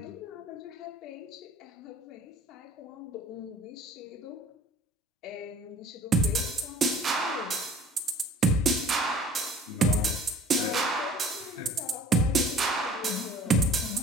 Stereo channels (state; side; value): normal; both; correlation 0.49